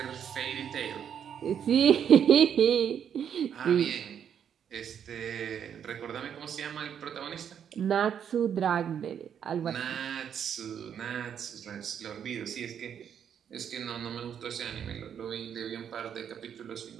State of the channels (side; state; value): left; quieter; 8.5 dB